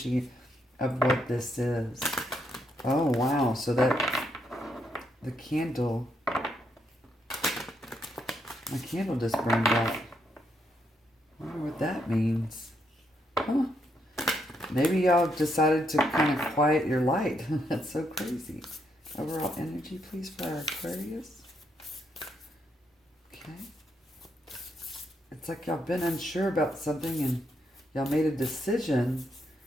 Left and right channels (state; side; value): normal; both; correlation 0.77